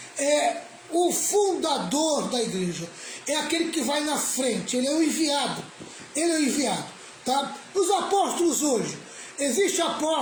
é o fundador da igreja, é aquele que vai na frente, ele é o enviado, tá? Os apóstolos hoje, existe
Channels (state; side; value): identical; both; correlation 1.00